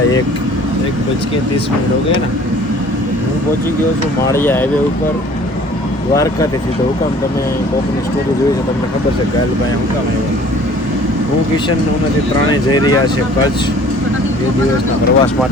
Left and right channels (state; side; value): normal; both; correlation 0.51